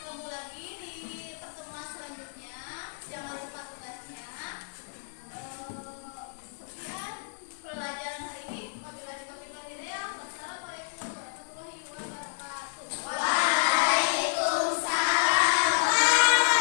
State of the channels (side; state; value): right; silent; digital silence